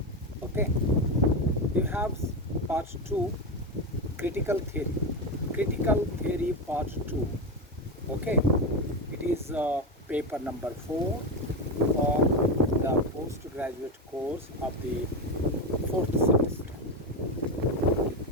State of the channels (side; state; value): both; normal; correlation 0.14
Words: Okay, we have part 2, critical theory. Critical theory part 2. Okay, it is paper number 4 for the postgraduate course of the 4th semester.